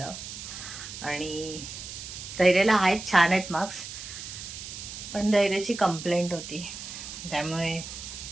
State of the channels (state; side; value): noise; right; hiss, 10 dB below the sound